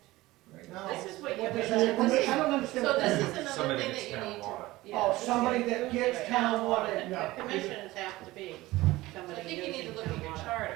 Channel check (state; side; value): quieter; left; 18.6 dB